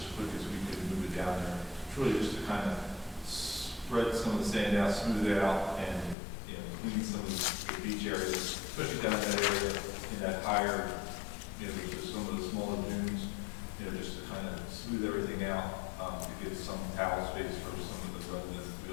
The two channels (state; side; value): drops out; right; at 6.2 s